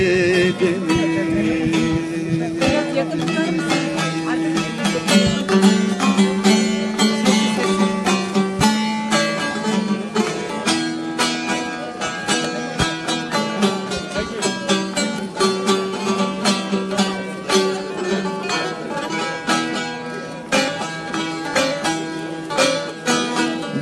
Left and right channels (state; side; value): identical; both; correlation 1.00